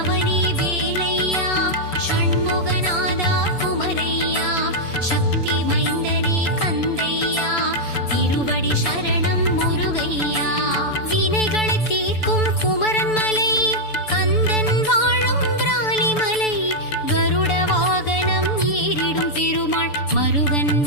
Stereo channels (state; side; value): late; right; 6.9 ms